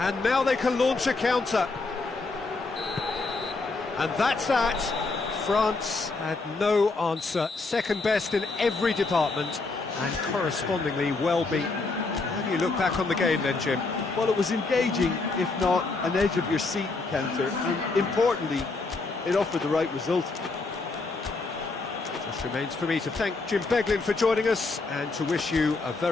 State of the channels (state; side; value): quieter; right; 3.7 dB